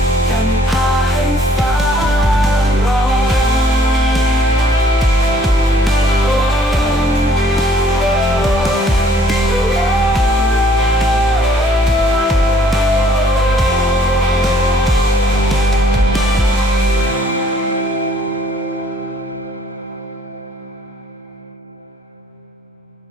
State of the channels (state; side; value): normal; both; correlation 0.61